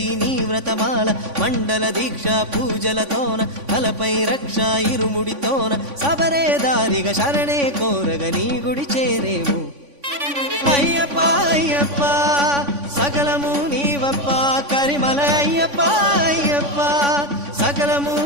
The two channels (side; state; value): left; late; 3.5 ms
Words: నీ వ్రతమాల మండల దీక్ష పూజలతోన తలపై రక్ష ఇరుముడితోన సబరే దారిగా శరణే కోరగ నీ గుడి చేరేము అయ్యప్ప అయ్యప్ప సకలము నీవప్ప కరిమల అయ్యప్ప అయ్యప్ప సకలము